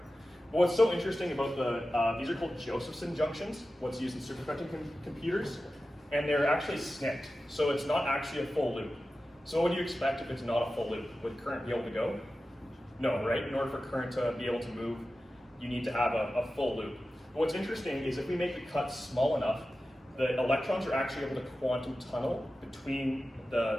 But what's so interesting about these are called Josephson junctions, what's used in superconducting computers, and they're actually snipped. So it's not actually a full loop. So what would you expect if it's not a full loop? Would current be able to go? No, right? In order for current to be able to move, you need to have a full loop. But what's interesting is if we make the cut small enough, the electrons are actually able to quantum tunnel between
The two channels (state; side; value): normal; both; correlation 0.94